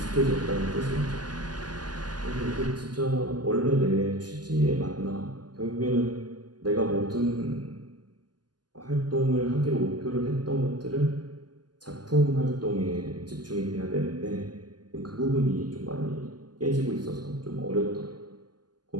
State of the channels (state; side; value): late; left; 0.70 ms